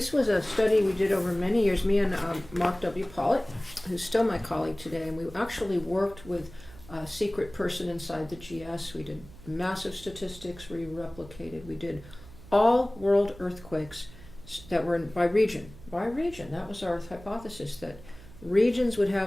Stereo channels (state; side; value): noise; right; hum, 19 dB below the sound